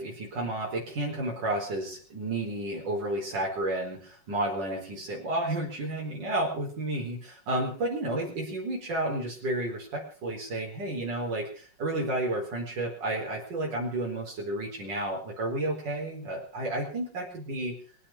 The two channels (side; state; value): left; late; 5.5 ms